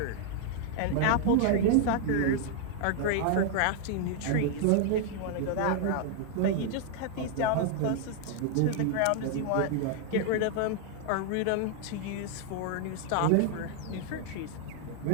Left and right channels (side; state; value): both; different; correlation 0.00